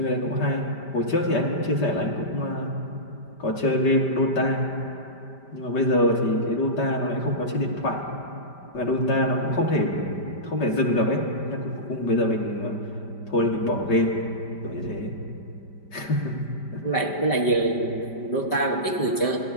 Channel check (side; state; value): right; late; 5.1 ms